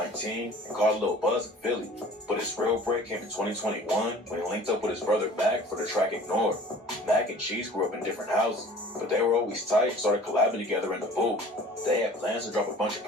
and caught a little buzz in Philly, but his real break came in 2021 when he linked up with his brother Mac for the track Ignore. Mac and Cheese grew up in different houses, but they were always tight and started collabing together in the booth. They had plans to drop a bunch of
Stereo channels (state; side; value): normal; both; correlation 0.46